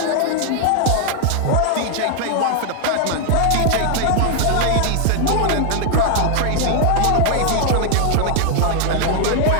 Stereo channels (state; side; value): different; both; correlation 0.00